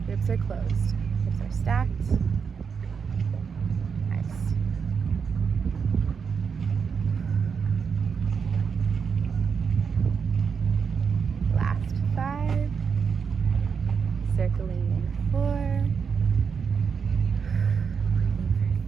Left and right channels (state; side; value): quieter; left; 6.2 dB